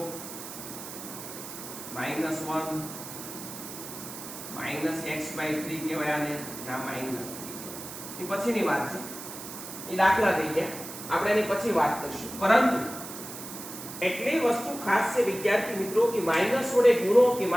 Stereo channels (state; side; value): noise; right; hiss, 11 dB below the sound